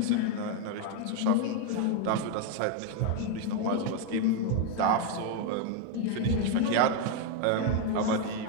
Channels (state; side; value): different; both; correlation 0.01